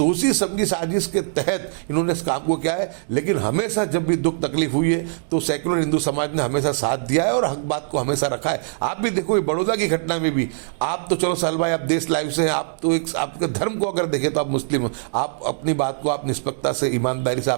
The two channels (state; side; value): silent; left; 64 dB below the other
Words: समझी साजिश के तहत इन्होंने इस काम को किया है। लेकिन हमेशा जब भी दुख तकलीफ हुई है तो सेक्युलर हिंदू समाज ने हमेशा साथ दिया है और हक बात को हमेशा रखा है। आप भी देखो बड़ौदा की घटना में भी, आप तो चलो साल भाई आप देश लाइव से हैं, आप तो एक आपके धर्म को अगर देखें तो आप मुस्लिम हो, आप अपनी बात को आप निष्पक्षता से ईमानदारी से